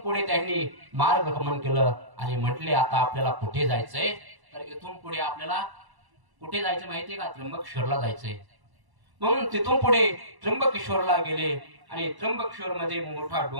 त्यांनी मार्गक्रमण केलं आणि म्हटले आता आपल्याला कुठे जायचंय. तर इथून पुढे आपल्याला कुठे जायचं माहितीये का? त्र्यंबकेश्वरला जायचंय. म्हणून तिथून पुढे त्र्यंबकेश्वरला गेले आणि त्र्यंबकेश्वर मध्ये मोठा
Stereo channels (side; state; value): left; late; 1.1 ms